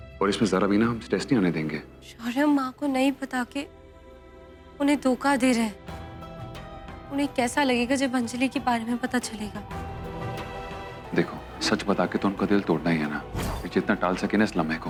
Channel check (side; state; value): both; identical; correlation 1.00